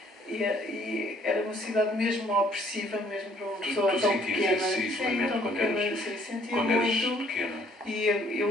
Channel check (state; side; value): normal; both; correlation 0.62